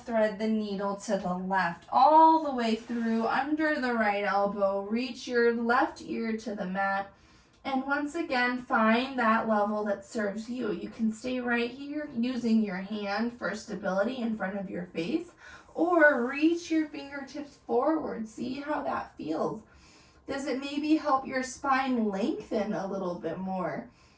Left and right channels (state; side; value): identical; both; correlation 1.00